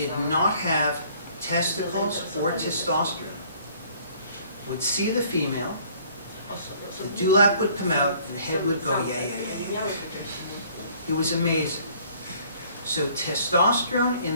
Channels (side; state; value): both; inverted; correlation -0.58